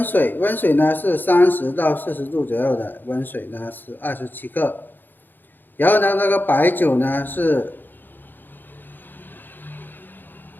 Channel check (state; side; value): late; right; 0.091 ms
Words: 水，溫水呢是30到40度左右的，溫水呢是27克，然後呢那個白酒呢是